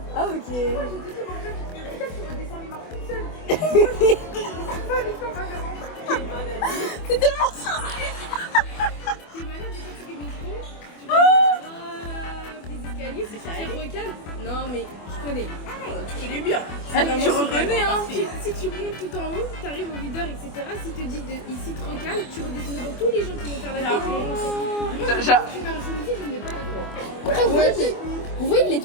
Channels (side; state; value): right; late; 24 ms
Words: Ah, ok. C'est tellement ça. T'es malade, tu fais des métros, tu vas des escaliers, c'est tu recales. Non, mais je connais. Tu connais bien. Tu reconnais, hein. Si tu montes tout en haut, t'arrives au videur, etc. Si te dit ici te recale, tu redescends devant tous les gens qui vont faire la queue. Tu mets un chemise, je ne mets pas avec toi. Après, vous voyez les